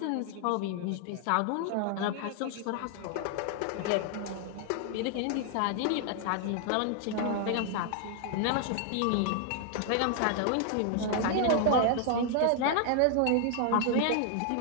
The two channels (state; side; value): different; both; correlation 0.00